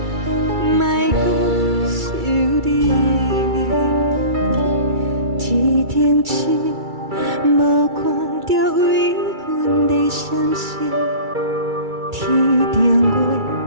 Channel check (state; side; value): late; left; 2.3 ms